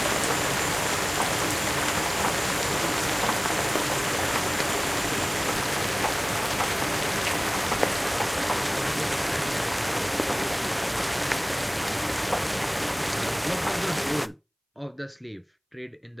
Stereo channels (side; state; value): both; identical; correlation 1.00